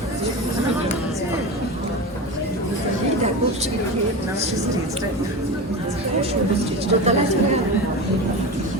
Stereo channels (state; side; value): normal; both; correlation 0.25